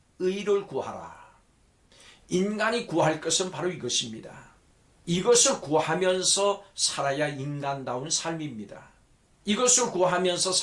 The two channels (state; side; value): identical; both; correlation 1.00